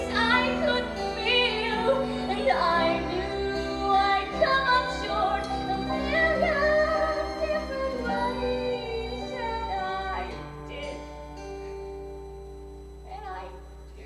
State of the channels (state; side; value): identical; both; correlation 1.00